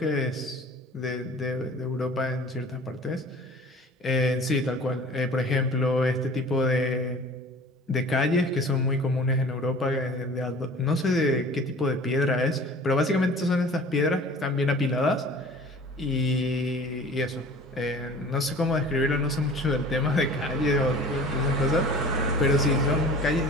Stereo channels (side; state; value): both; normal; correlation 0.44